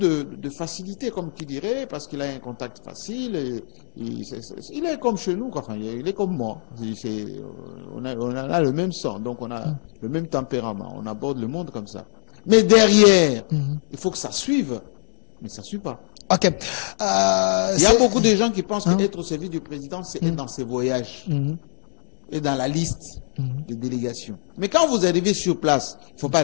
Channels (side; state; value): right; silent; 64 dB below the other